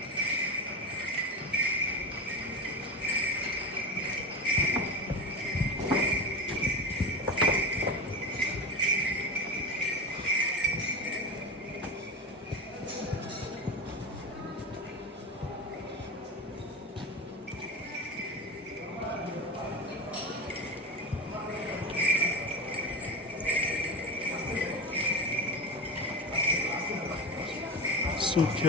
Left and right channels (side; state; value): both; normal; correlation 0.23